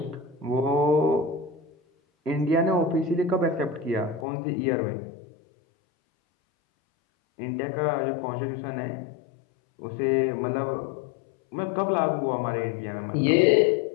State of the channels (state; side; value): drops out; right; at 4.2 s